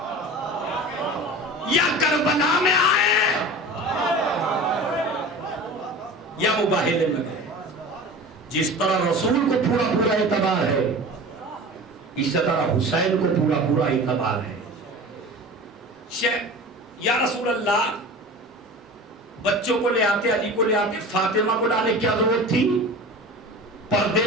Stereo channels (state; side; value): normal; both; correlation 0.36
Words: یا کربلا میں آئے یا مباہلے میں گئے۔ جس طرح رسول کو پورا پورا اعتبار ہے، اس طرح حسین کو پورا پورا اعتبار ہے۔ یا رسول اللہ، بچوں کو لے آتے، علی کو لے آتے، فاطمہ کو لانے کی کیا ضرورت تھی؟ پردے